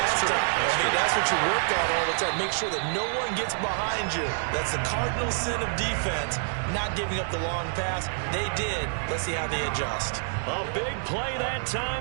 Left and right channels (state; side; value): silent; left; digital silence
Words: time. That's what you work on all the time. Make sure that no one gets behind you. That's the cardinal sin of defense, not giving up the long pass. They did. Let's see how they adjust. A big play that